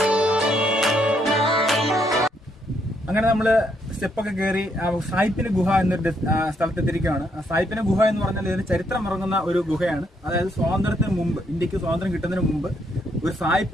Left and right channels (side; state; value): both; normal; correlation 0.74